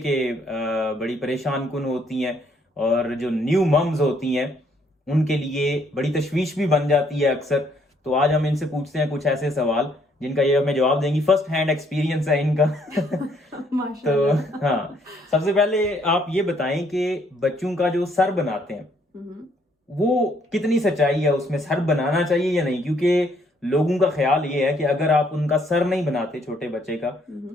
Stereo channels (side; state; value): both; normal; correlation 0.67